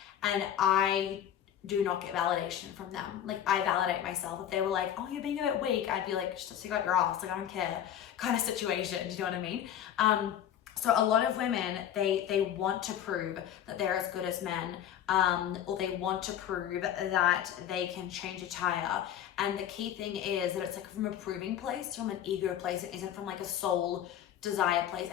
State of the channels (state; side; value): quieter; right; 10.4 dB